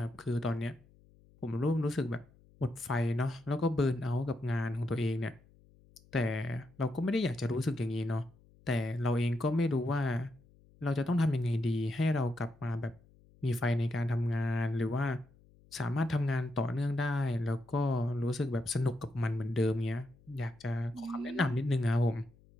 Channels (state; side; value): noise; left; hum, 28 dB below the sound